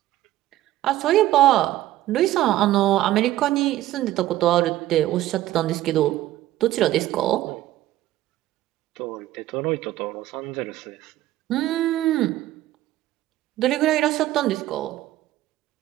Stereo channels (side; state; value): left; quieter; 14.7 dB